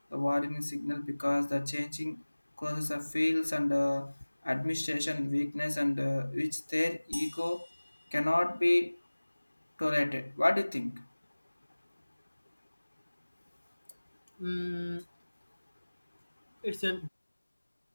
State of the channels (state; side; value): inverted; both; correlation -1.00